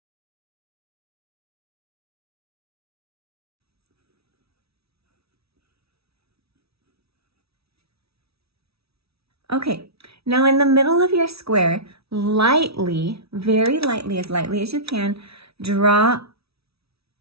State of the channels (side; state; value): left; late; 0.77 ms